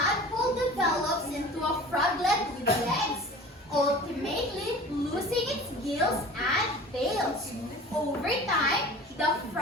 develops into a froglet with legs, ultimately losing its gills and tails. Over time, the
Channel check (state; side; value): normal; both; correlation 0.40